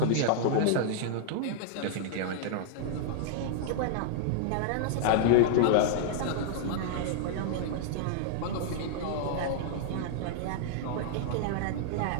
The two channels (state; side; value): different; both; correlation -0.01